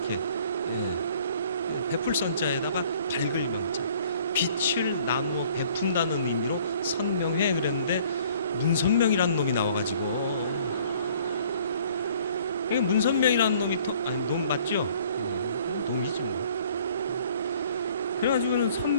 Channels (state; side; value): inverted; both; correlation -0.57